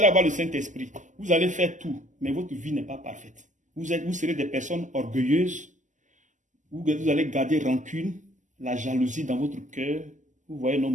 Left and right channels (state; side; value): late; left; 0.36 ms